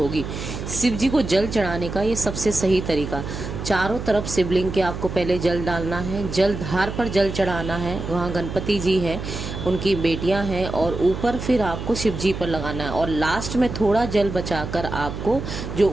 शिव जी को जल चढ़ाने का ये सबसे सही तरीका, चारों तरफ शिवलिंग के आपको पहले जल डालना है, जल धार पर जल चढ़ाना है। वहाँ गणपति जी हैं, उनकी बेटियां हैं, और ऊपर फिर आपको शिव जी पर लगाना है। और लास्ट में थोड़ा जल बचाकर आपको जो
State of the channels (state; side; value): noise; right; hum, 7 dB below the sound